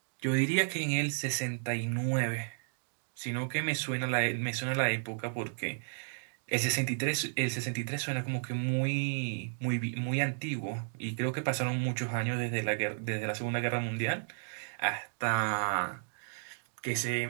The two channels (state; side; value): silent; left; digital silence